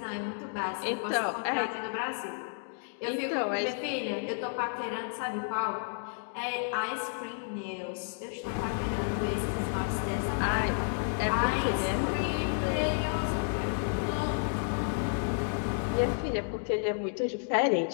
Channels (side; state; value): right; silent; digital silence